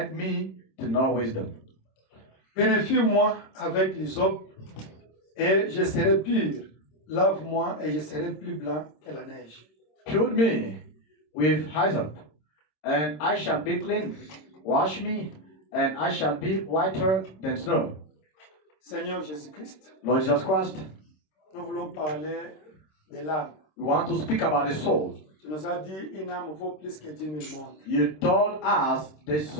me to know wisdom. Purifie-moi avec l'hysope, et je serai pur. Lave-moi, et je serai plus blanc que la neige. Pure me with hyssop, and I shall be clean. Wash me, and I shall be whiter than snow. Seigneur Jésus-Christ, Lord Jesus Christ, nous voulons parler de l'âme. we want to speak about the soul. Tu nous as dit une âme vaut plus que 10 000 mondes. You told us the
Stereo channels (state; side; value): late; right; 26 ms